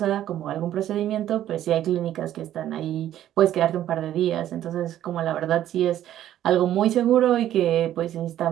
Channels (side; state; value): left; quieter; 12.1 dB